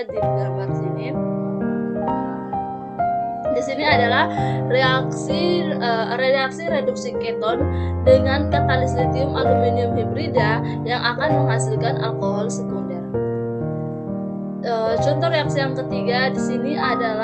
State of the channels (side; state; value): both; identical; correlation 1.00